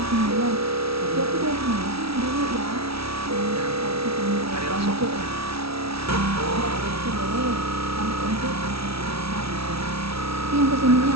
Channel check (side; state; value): left; late; 0.76 ms